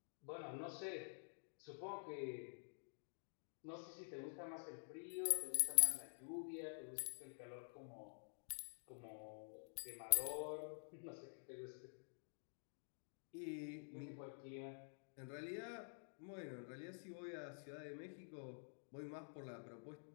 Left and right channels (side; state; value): right; silent; digital silence